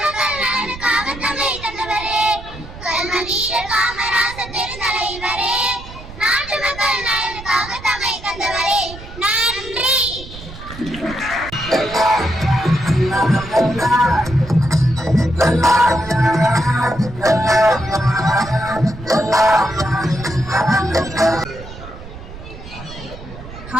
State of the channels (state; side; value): noise; right; rumble, 14 dB below the sound